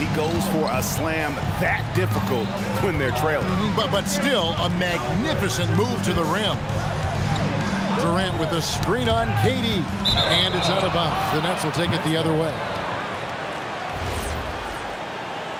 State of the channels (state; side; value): identical; both; correlation 1.00